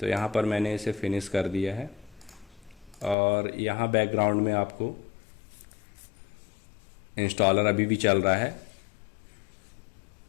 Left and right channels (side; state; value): right; drops out; at 3.2 s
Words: यहाँ पर मैंने इसे फिनिश कर दिया है और यहाँ बैकग्राउंड में आपको इंस्टॉलर अभी भी चल रहा है।